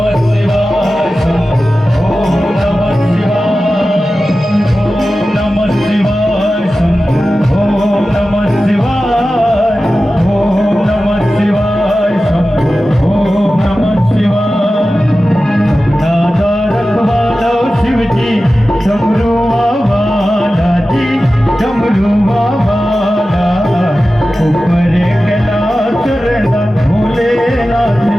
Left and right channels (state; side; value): normal; both; correlation 0.94